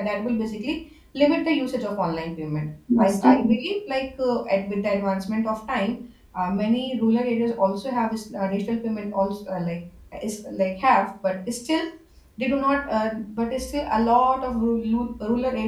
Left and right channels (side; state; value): both; identical; correlation 1.00